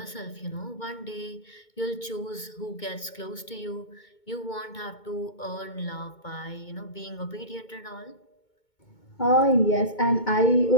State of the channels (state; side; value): late; right; 2.2 ms